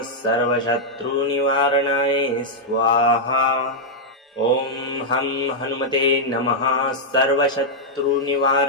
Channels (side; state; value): both; normal; correlation -0.05